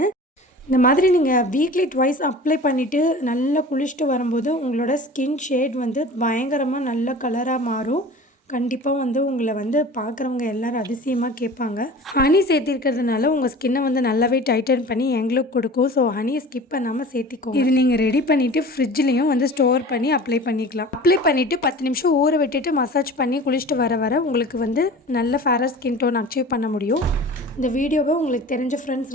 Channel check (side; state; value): both; normal; correlation 0.39